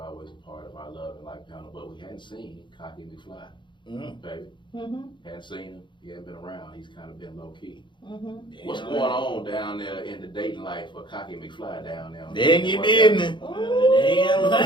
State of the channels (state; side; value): late; right; 0.23 ms